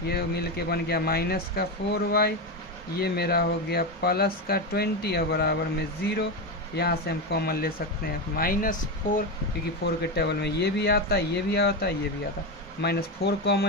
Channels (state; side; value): normal; both; correlation 0.14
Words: ये मिल के बन गया माइनस का 4y, ये मेरा हो गया प्लस का 20 और बराबर में 0। यहाँ से हम कॉमन ले सकते हैं माइनस 4, क्योंकि 4 के टेबल में ये भी आता है, ये भी आता है, ये भी आता है, माइनस 4